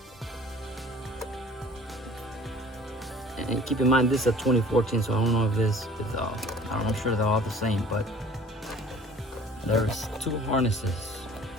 And keep in mind, this is a 2014, so I don't know if this is I'm sure they're all the same, but there's two harnesses.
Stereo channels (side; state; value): both; normal; correlation 0.49